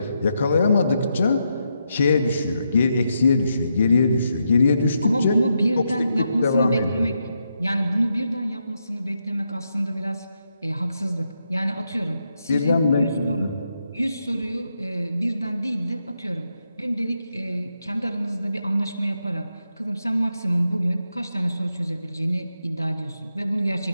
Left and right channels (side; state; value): both; inverted; correlation -0.82